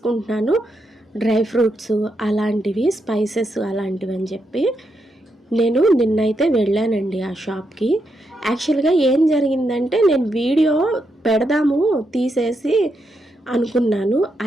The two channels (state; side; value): normal; both; correlation 0.82